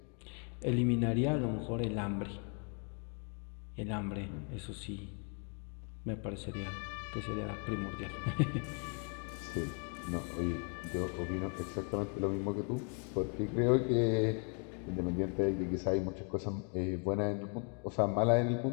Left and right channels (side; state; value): right; quieter; 39.6 dB